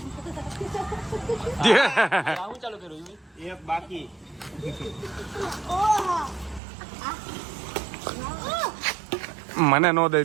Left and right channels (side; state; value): left; drops out; at 6.6 s